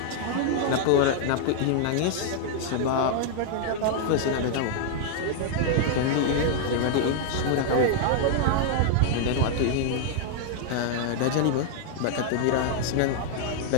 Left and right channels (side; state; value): both; different; correlation -0.01